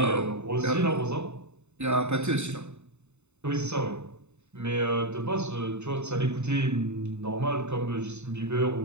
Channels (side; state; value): left; late; 0.82 ms